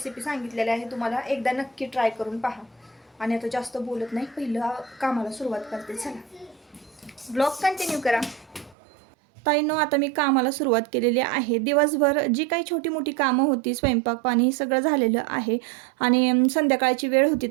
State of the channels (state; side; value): drops out; left; at 8.8 s